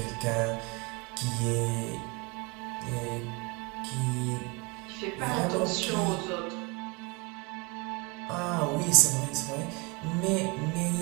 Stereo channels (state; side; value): quieter; left; 28.6 dB